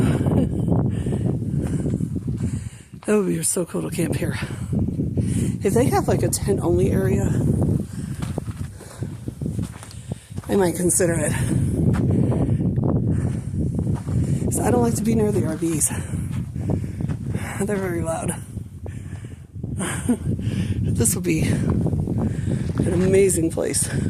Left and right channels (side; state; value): both; identical; correlation 1.00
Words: That would be so cool to camp here. If they have like a tent only area, I might consider it. So I don't like to be near the RVs. They're very loud. This will be an amazing place